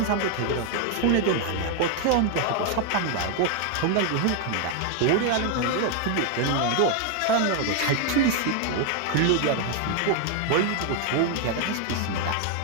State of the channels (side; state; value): both; different; correlation 0.01